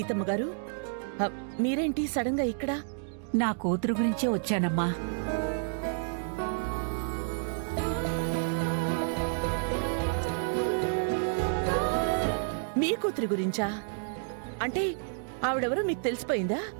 గారు, మీరేంటి సడన్ గా ఇక్కడ? నా కూతురు గురించే వచ్చానమ్మా. మీ కూతురి గురించా? అంటే ఆవిడెవరో మీకు తెలిసిపోయిందా?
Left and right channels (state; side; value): silent; left; digital silence